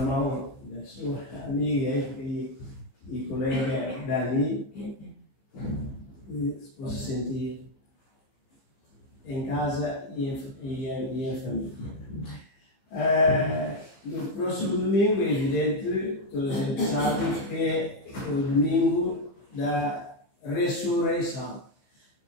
mão da sua amiga e colega Dani, que se possa sentir em casa e em família. No próximo domingo, é evidente, toda a gente sabe que é o domingo da ressurreição.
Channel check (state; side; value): late; right; 15 ms